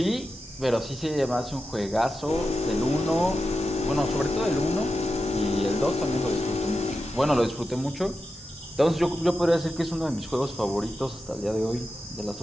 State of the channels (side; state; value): both; normal; correlation 0.90